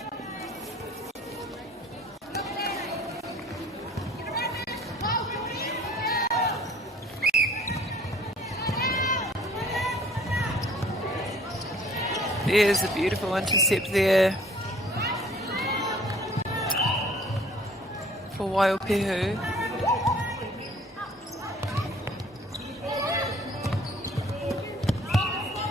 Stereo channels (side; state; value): both; normal; correlation 0.54